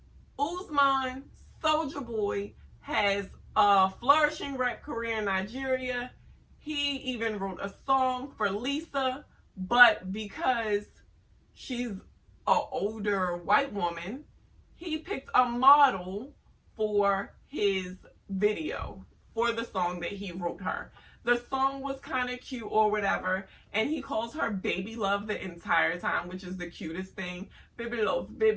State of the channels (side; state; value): both; identical; correlation 1.00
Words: Uzman, Soulja Boy, has a flourishing rap career in Nigeria. He even wrote a song for Lisa, but because she's an older white woman, he picked a model for his video, for the song that he wrote her. The song was kind of cute or whatever, and he calls her baby love the entire time, which is the cutest thing. Baby love,